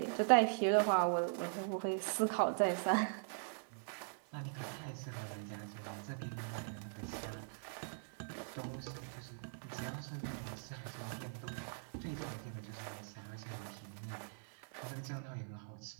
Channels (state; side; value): silent; left; 50 dB below the other